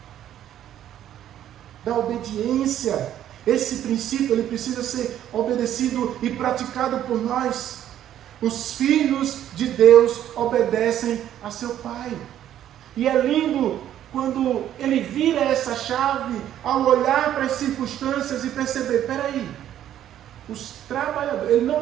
da obediência. Esse princípio ele precisa ser obedecido e praticado por nós. Os filhos de Deus obedecem a seu Pai. E é lindo quando ele vira essa chave ao olhar para as circunstâncias e perceber, peraí, os trabalhadores, ele não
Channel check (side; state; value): left; quieter; 11.3 dB